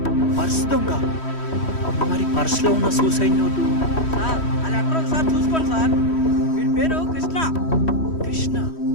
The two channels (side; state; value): right; late; 3.1 ms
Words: పర్స్ దొంగ? మరి పర్స్లో ఉన్న సూసైడ్ నోటు సార్ అది ఎక్కడ ఒకసారి చూసుకోండి సార్. వీడి పేరు కృష్ణ. కృష్ణ?